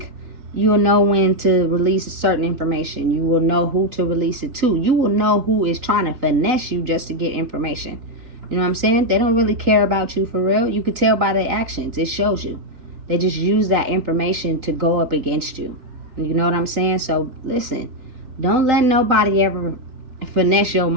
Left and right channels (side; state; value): left; late; 3.9 ms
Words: you will know when to release certain information. You will know who to release it to. You will know who is trying to finesse you just to get information. You know what I'm saying? They don't really care about you for real. You could tell by their actions. It shows you. They just use that information to go up against you. You know what I'm saying? So listen, don't let nobody ever finesse your